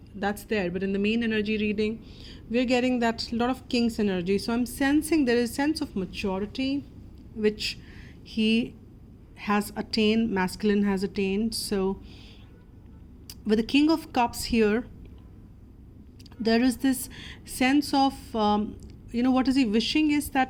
that's there. But in the main energy reading, we're getting that lot of King's energy. So I'm sensing there is a sense of maturity which he has attained, masculine has attained. So with the King of Cups here, there is this sense of, what is he wishing is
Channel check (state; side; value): identical; both; correlation 1.00